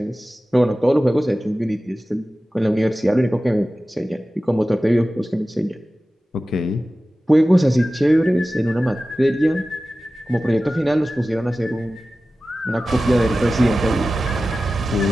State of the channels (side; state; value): both; normal; correlation 0.95